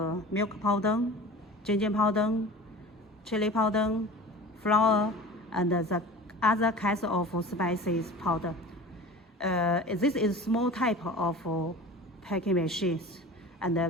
milk powder, ginger powder, chili powder, flour, and the other kinds of spices powder. This is small type of packing machines and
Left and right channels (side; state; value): both; normal; correlation 0.37